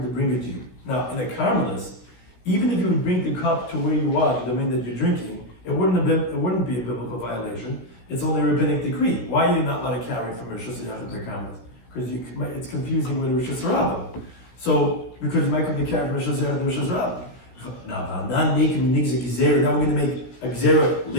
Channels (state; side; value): late; right; 16 ms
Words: to bring it to you. Now, in a Carmelis, even if you would bring the cup to where you are, the domain that you're drinking, it wouldn't be a biblical violation. It's only a rabbinic decree. Why are you not allowed to carry it from Rosh Hashanah to the Carmelis? Because it's confusing with Rosh Hashanah. So, because you might come to carry from Rosh Hashanah to Rosh Hashanah. Now we're going to make a gezerah